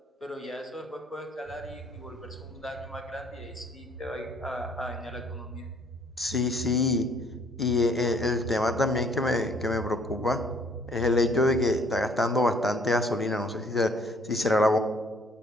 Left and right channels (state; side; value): normal; both; correlation 0.61